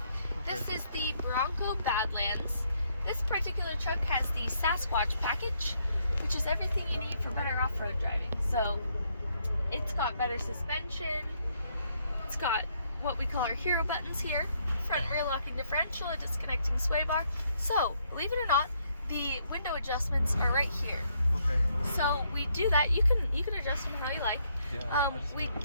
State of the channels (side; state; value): both; inverted; correlation -0.72